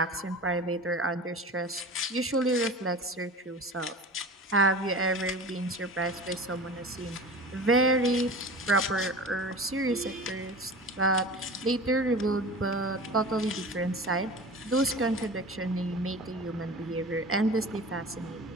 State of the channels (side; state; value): both; normal; correlation 0.36